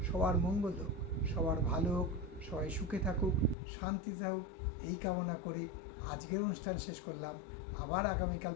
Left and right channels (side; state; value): right; drops out; at 3.6 s